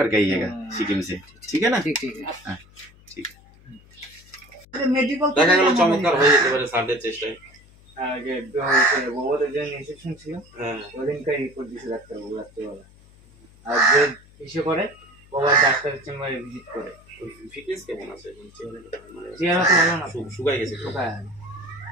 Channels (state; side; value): noise; left; hum, 25 dB below the sound